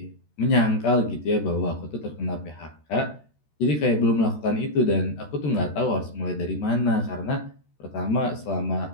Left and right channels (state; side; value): late; right; 13 ms